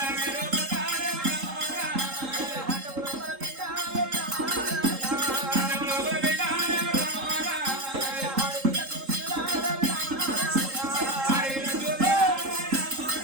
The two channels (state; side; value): late; left; 3.7 ms